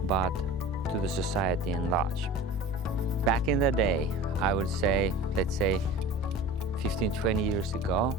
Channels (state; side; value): normal; both; correlation 0.37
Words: but to the society in large. Back in the day, I would say, let's say 15, 20 years ago,